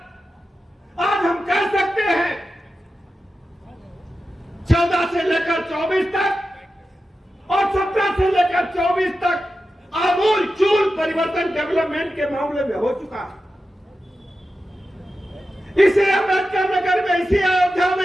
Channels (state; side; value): normal; both; correlation 0.91